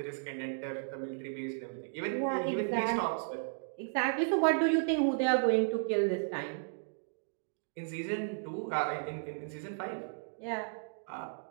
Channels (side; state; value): left; silent; digital silence